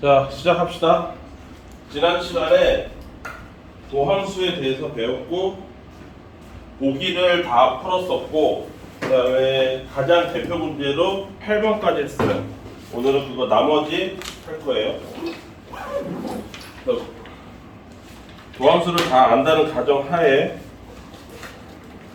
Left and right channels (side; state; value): both; identical; correlation 1.00